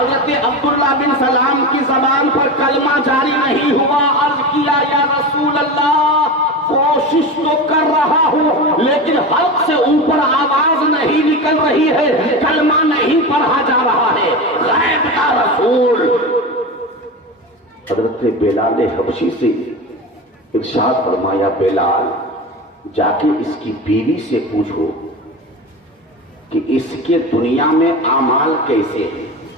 عبداللہ بن سلام کی زبان پر کلمہ جاری نہیں ہوا۔ عرض کیا یا رسول اللہ، کوشش تو کر رہا ہوں لیکن حلق سے اوپر آواز نہیں نکل رہی ہے، کلمہ نہیں پڑھا جا رہا ہے، غیب کا رسول۔ حضرت بلال حبشی سے ارشاد فرمایا، بلال جا کے اس کی بیوی سے پوچھو کہ اس کے دنیا میں اعمال کیسے ہیں،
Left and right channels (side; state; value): both; normal; correlation 0.25